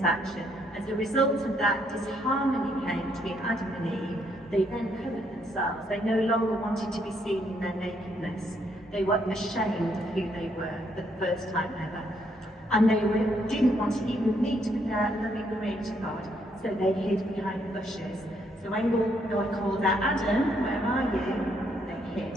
action. As a result of that, disharmony came between Adam and Eve. They then covered themselves. They no longer wanted to be seen in their nakedness. They were ashamed of who they were for the first time ever. And they didn't want to even meet with their loving creator God, so they hid behind the bushes. So when God called out, Adam, where are you? They hid.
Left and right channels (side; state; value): both; normal; correlation 0.72